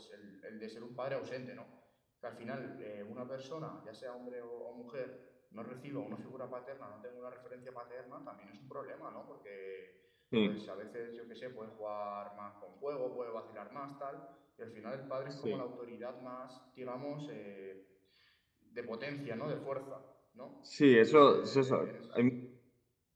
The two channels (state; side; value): identical; both; correlation 1.00